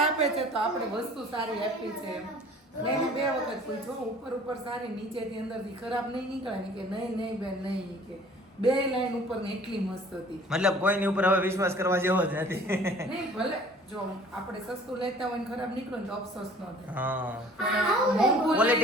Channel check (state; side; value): normal; both; correlation 0.50